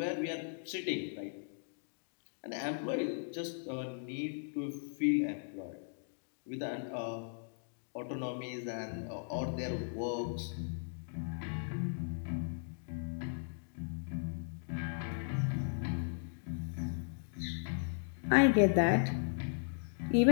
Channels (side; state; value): right; silent; digital silence